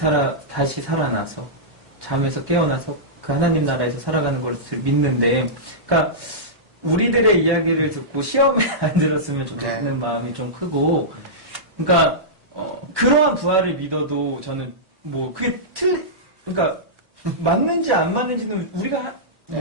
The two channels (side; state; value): left; late; 1.1 ms